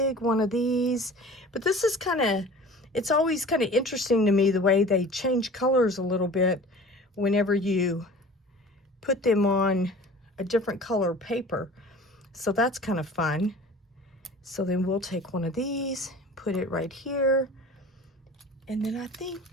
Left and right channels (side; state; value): both; normal; correlation 0.42